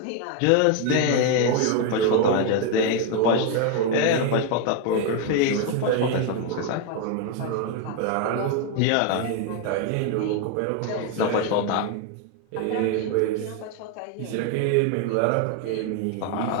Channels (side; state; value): both; different; correlation 0.01